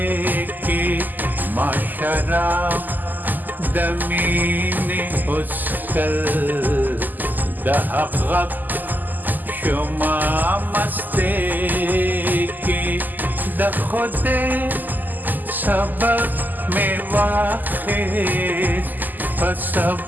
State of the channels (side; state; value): left; late; 0.085 ms